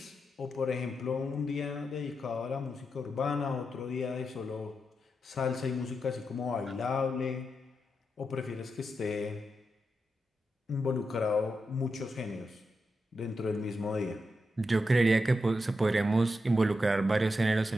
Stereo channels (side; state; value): both; normal; correlation 0.87